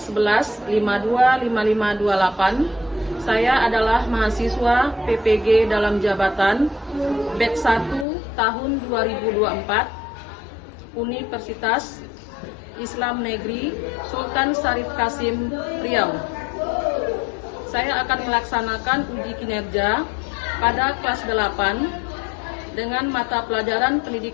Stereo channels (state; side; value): drops out; right; at 8.1 s